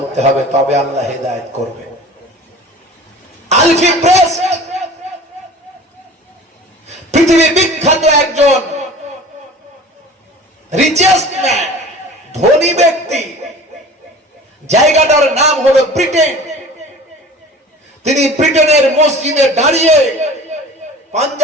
হবে তবে আল্লাহ হেদায়েত করবে আলফি প্রেস পৃথিবী বিখ্যাত একজন রিচেস্ট ম্যান ধনী ব্যক্তি জায়গাটার নাম হলো ব্রিটেন তিনি ব্রিটেনের মসজিদে দাঁড়িয়ে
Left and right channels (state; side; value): normal; both; correlation 0.41